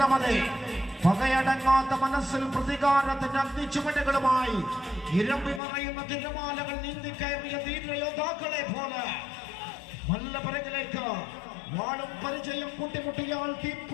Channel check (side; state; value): right; drops out; at 5.6 s